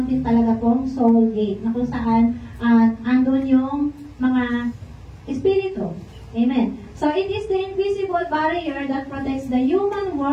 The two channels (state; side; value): identical; both; correlation 1.00